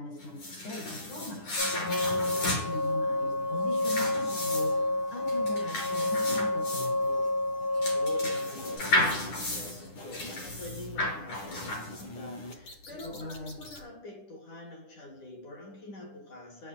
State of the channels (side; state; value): right; late; 10 ms